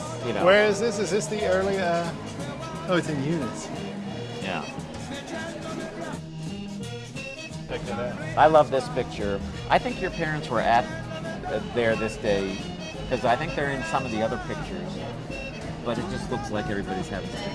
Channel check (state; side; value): identical; both; correlation 1.00